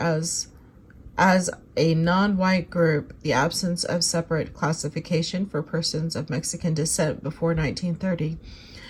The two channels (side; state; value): both; identical; correlation 1.00